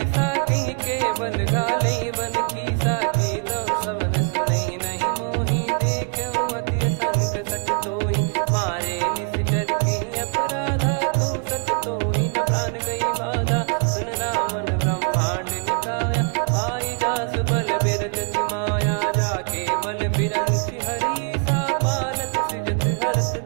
कहीं केवल गाले बन खीसा। की दो श्रवण सुनहि नहीं मोहि देखऊँ अति संक सट तोहि। मारे निश्चर कहीं अपराधा कहूँ सट तोहि न प्राण कहीं बाधा। सुन रावण ब्रह्मांड निकाया पाई जास बल बिरचति माया। जाके बल बिरंच हरीसा पालत सृजत हरत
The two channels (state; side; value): quieter; left; 39.7 dB